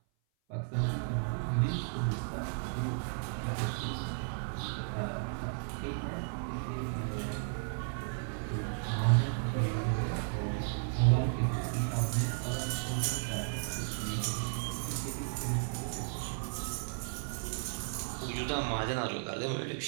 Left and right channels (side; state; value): left; silent; 55 dB below the other